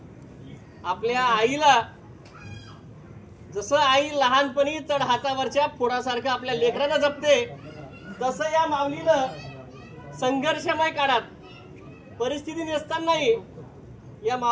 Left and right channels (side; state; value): both; identical; correlation 1.00